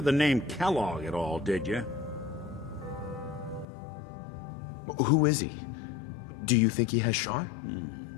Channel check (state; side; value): drops out; right; at 3.7 s